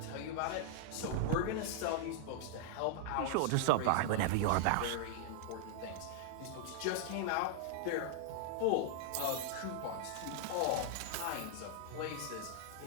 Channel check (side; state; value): both; different; correlation 0.00